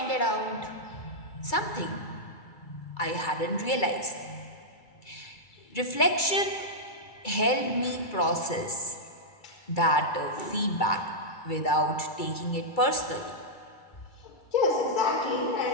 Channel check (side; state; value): right; late; 2.3 ms